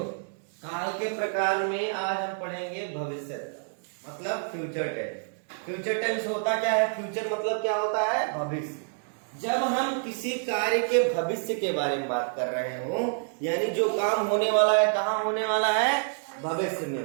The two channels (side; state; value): left; silent; digital silence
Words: काल के प्रकार में आज हम पढ़ेंगे भविष्य मतलब फ्यूचर टेंस। फ्यूचर टेंस होता क्या है? फ्यूचर मतलब क्या होता है? भविष्य। जब हम किसी कार्य के भविष्य के बारे में बात कर रहे हो, यानी जो काम होने वाला है, कहाँ होने वाला है? भविष्य में